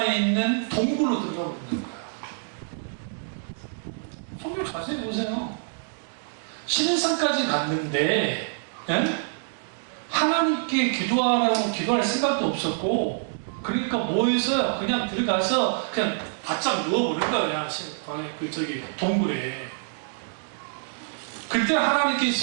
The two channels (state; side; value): silent; left; digital silence